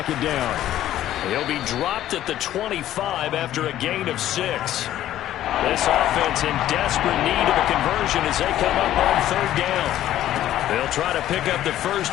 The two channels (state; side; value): quieter; right; 12.8 dB